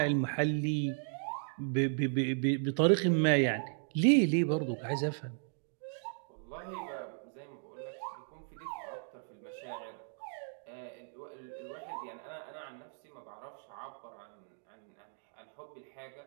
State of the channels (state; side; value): silent; left; digital silence